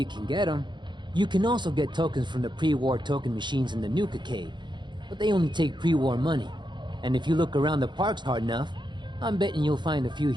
can get them. You can also get tokens from the pre-war token machines in the Nuka Cave. But they only take pre-war money. And if you look around the parks hard enough, I'm betting you'll find a few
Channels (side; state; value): left; late; 0.22 ms